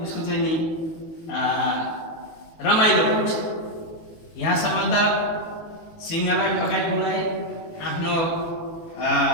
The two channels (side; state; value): right; late; 18 ms